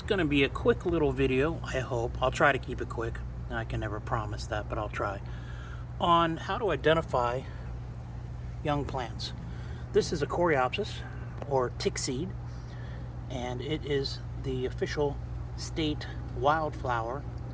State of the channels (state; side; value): identical; both; correlation 1.00